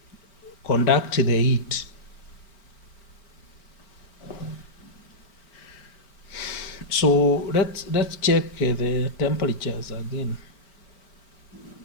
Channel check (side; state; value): right; late; 4.4 ms